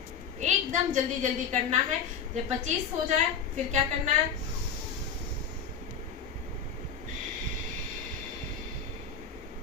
एकदम जल्दी जल्दी करना है। जब 25 हो जाए फिर क्या करना है,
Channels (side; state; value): right; quieter; 6.5 dB